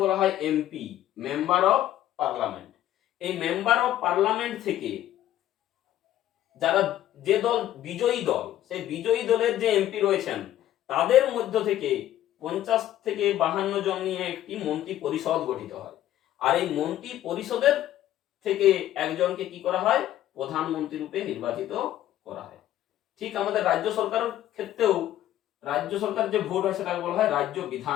বলা হয় এমপি, মেম্বার অফ পার্লামেন্ট। এই মেম্বার অফ পার্লামেন্ট থেকে যারা যে দল বিজয়ী দল, সেই বিজয়ী দলের যে এমপি রয়েছেন তাদের মধ্য থেকে 50 থেকে 52 জন নিয়ে একটি মন্ত্রী পরিষদ গঠিত হয়। আর এই মন্ত্রী পরিষদের থেকে একজনকে কি করা হয়, প্রধানমন্ত্রী রূপে নির্বাচিত করা হয়। ঠিক আমাদের রাজ্য সরকারের ক্ষেত্রেও রাজ্য সরকার যে ভোট হয় সেটাকে বলা হয় রাজ্য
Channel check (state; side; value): quieter; right; 12.7 dB